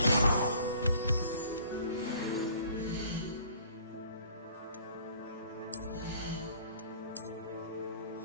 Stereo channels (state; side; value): inverted; both; correlation -0.54